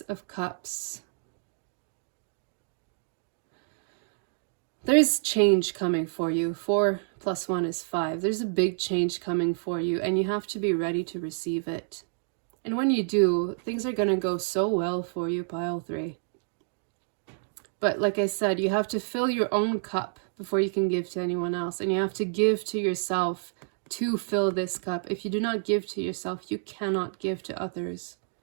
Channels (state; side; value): silent; left; digital silence